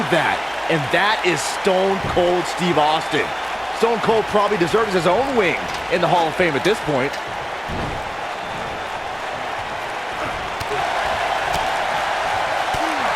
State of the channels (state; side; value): identical; both; correlation 1.00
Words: that, and that is Stone Cold Steve Austin. Stone Cold probably deserves his own wing in the Hall of Fame at this point.